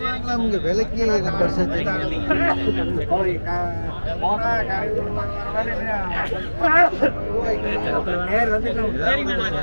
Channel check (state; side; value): inverted; both; correlation -1.00